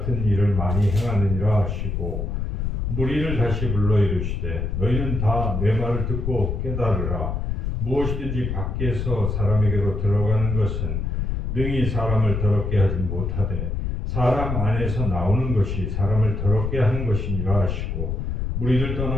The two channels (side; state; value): left; noise; rumble, 2 dB below the sound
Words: 일을 많이 행하느니라 하시고 무리를 다시 불러 이르시되 너희는 다 내 말을 듣고 깨달으라. 무엇이든지 밖에서 사람에게로 들어가는 것은 능히 사람을 더럽게 하지 못하되 사람 안에서 나오는 것이 사람을 더럽게 하는 것이니라 하시고 무리를